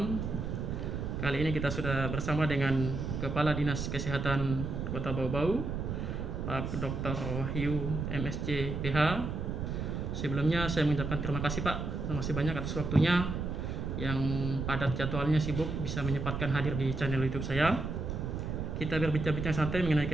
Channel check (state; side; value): noise; right; rumble, 3 dB below the sound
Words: Kali ini kita sudah bersama dengan Kepala Dinas Kesehatan Kota Bau-Bau, Pak Dr. Wahyu MSc PH. Sebelumnya saya mengucapkan terima kasih Pak, terima kasih banyak atas waktunya yang padat jadwalnya sibuk bisa menyempatkan hadir di channel YouTube saya. Kita berbincang-bincang santai mengenai